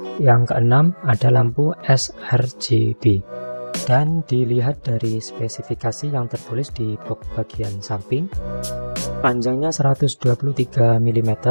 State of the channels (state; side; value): inverted; both; correlation -1.00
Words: yang keenam ada lampu sRGB, dan dilihat dari spesifikasi yang tertulis di box bagian samping, panjangnya 123 mm